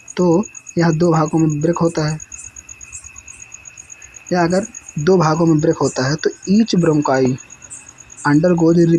तो यह दो भागों में ब्रेक होता है, या अगर दो भागों में ब्रेक होता है तो each bronchi undergoes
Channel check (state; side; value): identical; both; correlation 1.00